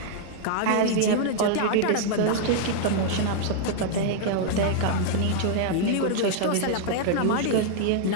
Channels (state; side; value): different; both; correlation -0.01